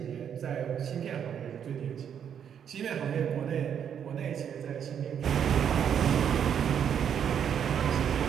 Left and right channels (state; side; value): quieter; left; 8.4 dB